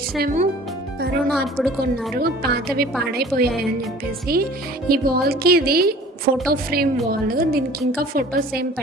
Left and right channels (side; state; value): both; normal; correlation 0.47